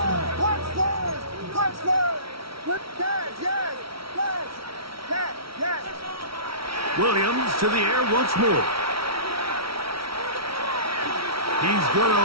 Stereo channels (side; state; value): left; late; 0.75 ms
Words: Williams to the air once more. He's going to